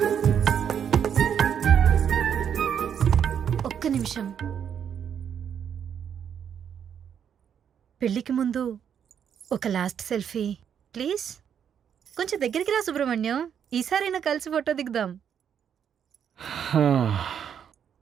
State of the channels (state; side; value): quieter; left; 8.3 dB